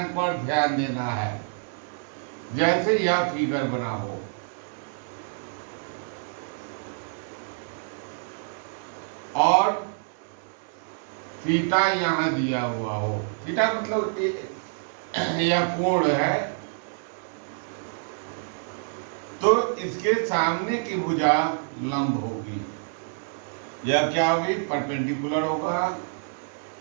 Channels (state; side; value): silent; left; 60 dB below the other